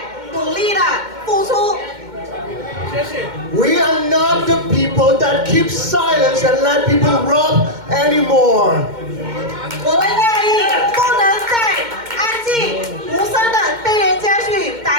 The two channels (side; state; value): left; late; 2.1 ms